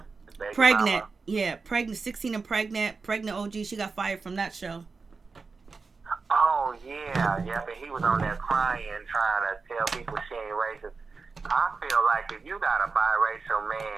pregnant. Mama. Yeah, pregnant, 16 and pregnant OG. She got fired from that show. Oh, yeah, but he was on there crying, trying to tell people she ain't racist. I feel like if you got a biracial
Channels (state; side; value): quieter; left; 4.5 dB